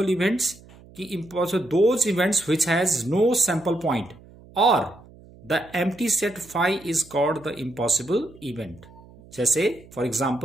events? Those events which has no sample point, or the empty set phi is called the impossible event. जैसे for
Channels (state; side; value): noise; right; hum, 23 dB below the sound